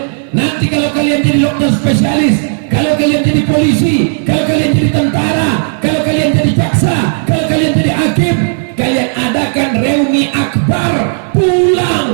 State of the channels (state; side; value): silent; left; 64 dB below the other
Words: Nanti kalau kalian jadi dokter spesialis, kalau kalian jadi polisi, kalau kalian jadi tentara, kalau kalian jadi jaksa, kalau kalian jadi hakim, kalian adakan reuni akbar,